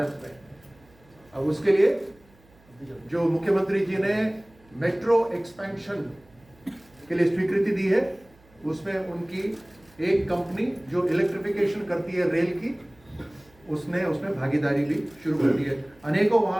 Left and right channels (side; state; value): right; noise; hum, 29 dB below the sound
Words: में। अब उसके लिए जो मुख्यमंत्री जी ने मेट्रो एक्सपेंशन के लिए स्वीकृति दी है, उसमें उनकी एक कंपनी जो इलेक्ट्रिफिकेशन करती है रेल की, उसमें भागीदारी भी शुरू कर दी है। अनेकों